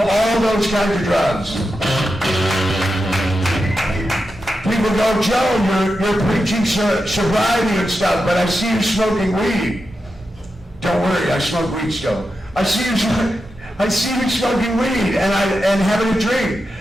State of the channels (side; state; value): both; normal; correlation 0.89